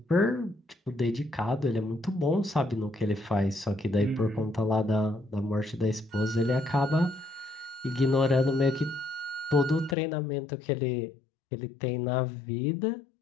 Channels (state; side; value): drops out; right; at 10.0 s